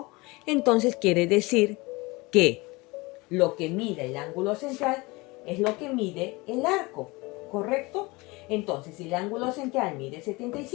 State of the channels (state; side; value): quieter; right; 24.0 dB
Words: entonces quiere decir que lo que mide el ángulo central es lo que mide el arco, ¿correcto? Entonces, si el ángulo central mide